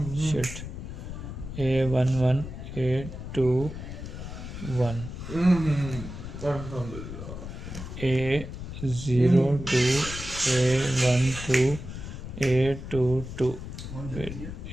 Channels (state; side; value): noise; left; rumble, 9 dB below the sound